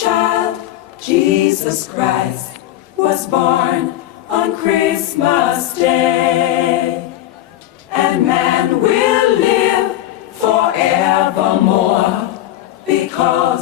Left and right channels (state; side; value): quieter; right; 13.7 dB